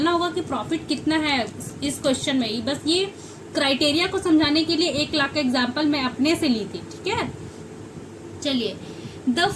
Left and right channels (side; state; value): both; identical; correlation 1.00